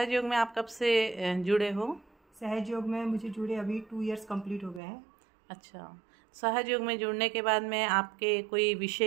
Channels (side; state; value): left; drops out; at 4.8 s